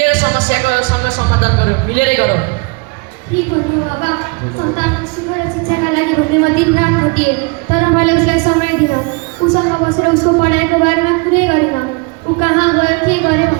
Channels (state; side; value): quieter; left; 30.3 dB